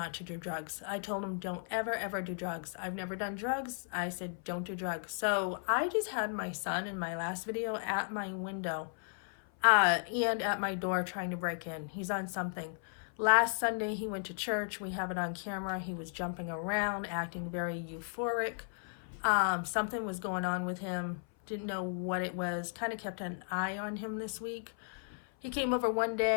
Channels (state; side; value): silent; right; 54 dB below the other